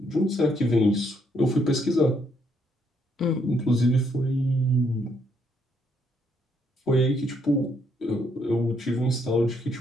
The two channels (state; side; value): normal; both; correlation 0.72